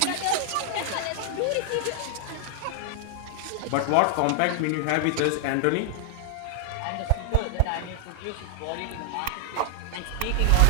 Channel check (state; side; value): different; both; correlation 0.00